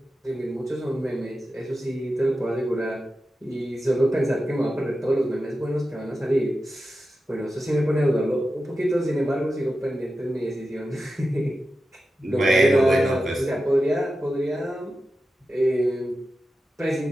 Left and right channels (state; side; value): normal; both; correlation 0.92